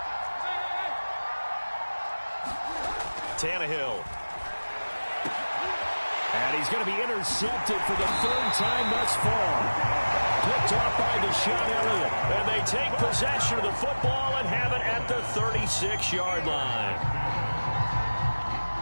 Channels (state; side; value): inverted; both; correlation -1.00